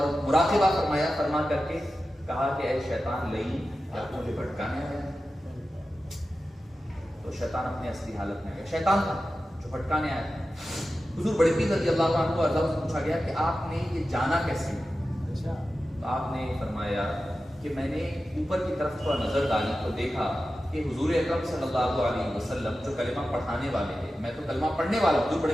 مراقبہ فرمایا. فرما کر کے کہا کہ اے شیطان لئی کیا مجھے بھٹکانے آیا؟ تو شیطان اپنے اصلی حالت میں گیا. شیطان تھا جو بھٹکانے آیا تھا. حضور بڑے پیر رضی اللہ عنہ ارضاہ سے پوچھا گیا کہ آپ نے یہ جانا کیسے؟ تو آپ نے فرمایا کہ میں نے اوپر کی طرف تھوڑا نظر ڈالی تو دیکھا کہ حضور اکرم صلی اللہ علیہ وسلم جو کلمہ پڑھانے والے ہیں، میں تو کلمہ پڑھنے والا ہوں. حضور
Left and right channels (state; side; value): normal; both; correlation 0.93